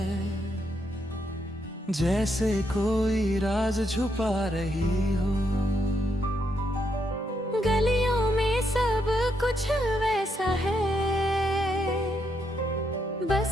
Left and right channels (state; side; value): normal; both; correlation 0.78